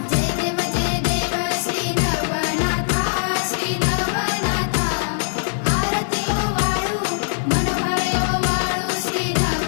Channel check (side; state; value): right; silent; digital silence